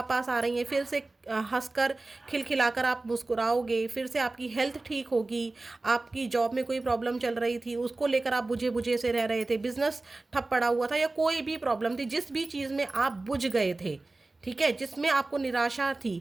आ रही हैं। फिर से हंसकर खिलखिलाकर आप मुस्कुराओगे। फिर से आपकी हेल्थ ठीक होगी। आपकी जॉब में कोई प्रॉब्लम चल रही थी, उसको लेकर आप बुझे बुझे से रह रहे थे, बिजनेस ठप पड़ा हुआ था या कोई भी प्रॉब्लम थी, जिस भी चीज़ में आप बुझ गए थे, ठीक है, जिसमें आपको निराशा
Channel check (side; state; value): left; quieter; 3.2 dB